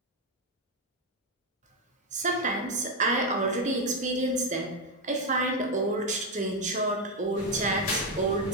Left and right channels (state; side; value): normal; both; correlation 0.06